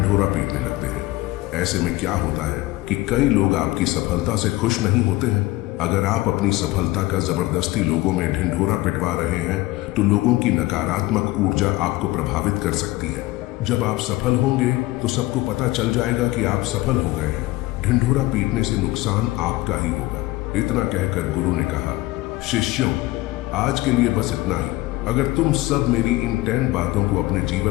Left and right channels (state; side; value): quieter; right; 18.9 dB